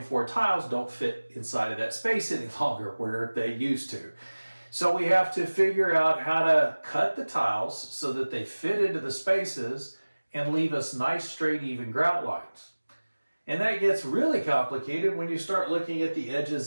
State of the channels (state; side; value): inverted; both; correlation -1.00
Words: tiles don't fit inside of that space any longer where they used to. So we have to figure out how to cut the tiles so that they fit into the spaces and leave us nice, straight, even grout lines. And that gets really complicated when you start looking at the